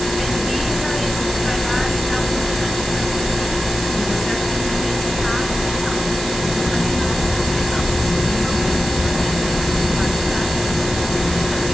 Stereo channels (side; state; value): right; noise; hiss, 7 dB below the sound